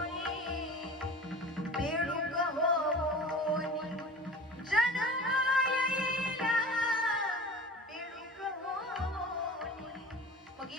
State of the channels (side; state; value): both; normal; correlation 0.38